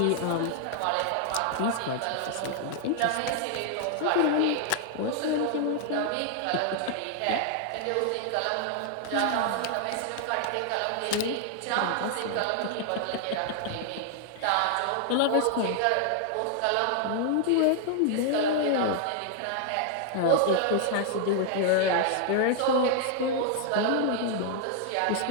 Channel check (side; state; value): both; different; correlation 0.00